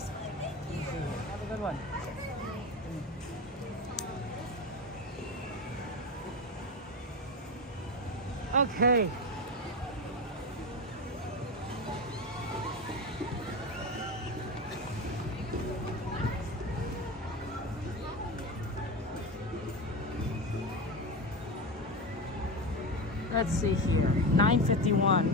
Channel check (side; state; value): both; normal; correlation 0.20